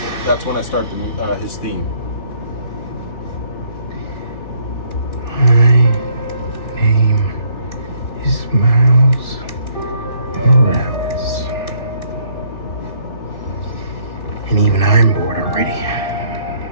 that's when I start his theme. My name is Miles Morales. And even I'm bored already.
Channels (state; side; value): late; right; 3.4 ms